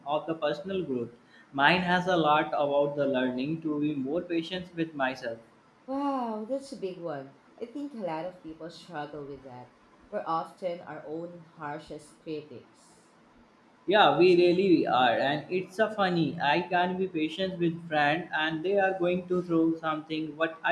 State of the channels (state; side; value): identical; both; correlation 1.00